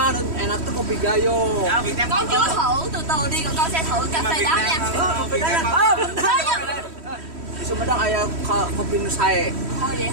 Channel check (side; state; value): left; late; 3.1 ms